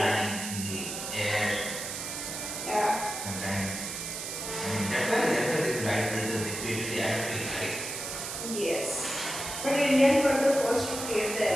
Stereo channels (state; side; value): noise; right; hiss, 6 dB below the sound